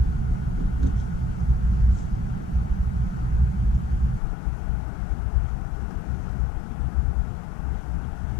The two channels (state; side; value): drops out; right; at 4.2 s